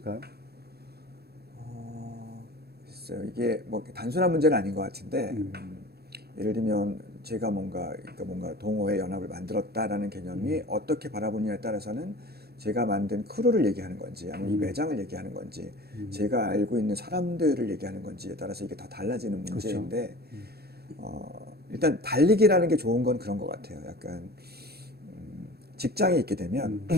글쎄요. 이게 뭐 단순한 문제는 아닌 것 같은데 예를 들면 제가 뭔가 동호회 연합을 만들었다라는 개념이 어떻게 바라보느냐에 따라서는 제가 만든 크루를 얘기하는 건지 아니면 이 매장을 얘기하는 건지 제가 알고 있는 사람들을 얘기하는 건지에 따라서 이게 다 달라지는 문제인데 일단 달리기라는 게 좋은 건 그런 것 같아요. 약간 직장에 있게 되면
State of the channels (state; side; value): late; left; 0.46 ms